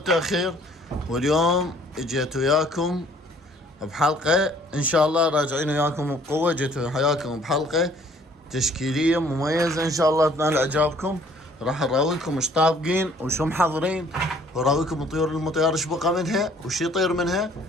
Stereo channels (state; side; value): normal; both; correlation 0.58